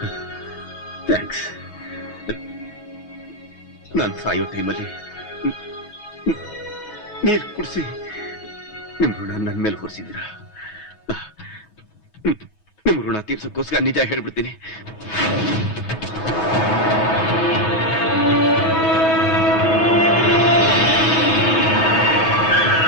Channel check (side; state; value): right; late; 6.2 ms